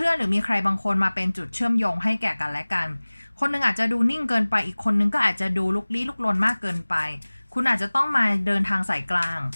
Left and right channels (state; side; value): inverted; both; correlation -1.00